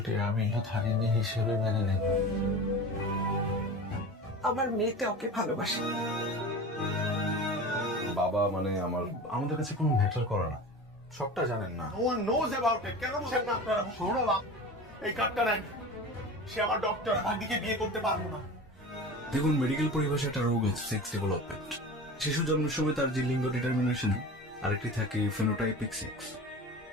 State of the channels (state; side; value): normal; both; correlation 0.33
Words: আমি ধারিনী হিসেবে মেনে নেব। আমার মেয়েতে ওকে ভালোবাসে। বাবা মানে আমাদের কাছে কোনো ম্যাটার করে না। সবটা জানেন না। No one knows about it. কেন বলছেন না আপনারা? সৌরভ এই কার্ডটা নেন। সে আমার ডক্টর, ভাগ্নিকে বিয়ে করতে পারবো না। দেখুন, মেডিকেল পরিভাষায় একটা রোগ আছে সেক্স ডেভেলপমেন্ট। শিশু জন্মের সময় তার যে লিঙ্গ ডিটারমিনেশন, আরেকটি থাকে ফেনোটাইপিক সেক্স,